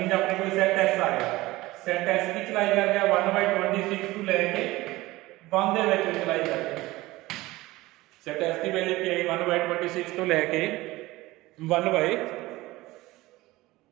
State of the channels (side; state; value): left; quieter; 19.1 dB